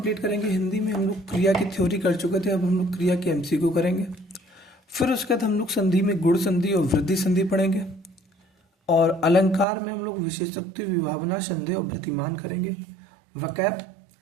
करेंगे। हिंदी में हम लोग क्रिया की थ्योरी कर चुके थे, अब हम लोग क्रिया के एमसीक्यू करेंगे। फिर उसके बाद हम लोग संधि में गुण संधि और वृद्धि संधि पढ़ेंगे, और अलंकार में हम लोग विशेषोक्ति, विभावना, संदेह और प्रतिमान करेंगे। वकैब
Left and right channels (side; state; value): left; drops out; at 9.7 s